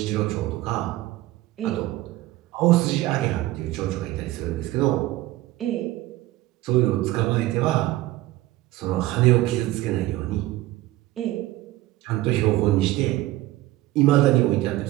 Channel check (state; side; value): quieter; left; 16.8 dB